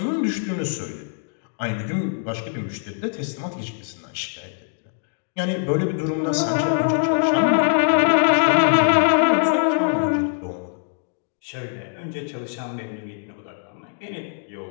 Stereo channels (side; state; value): right; silent; digital silence